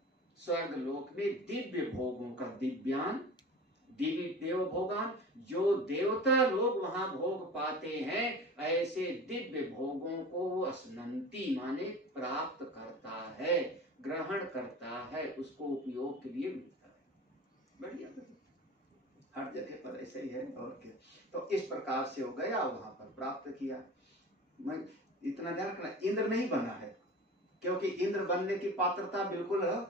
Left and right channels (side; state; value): both; normal; correlation 0.37